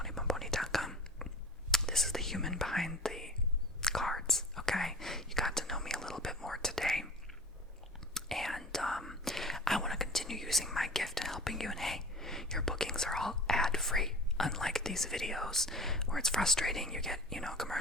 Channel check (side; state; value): both; normal; correlation 0.39